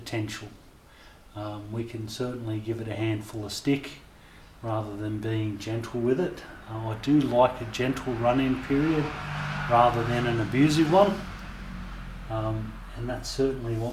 We can certainly give it a handful of stick rather than being gentle with it. I do like a gentle run-in period rather than an abusive one, and that's certainly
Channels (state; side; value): identical; both; correlation 1.00